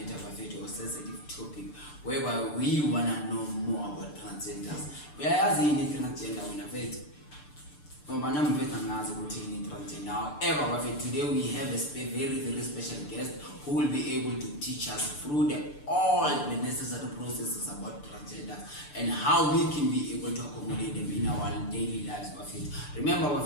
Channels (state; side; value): late; right; 6.8 ms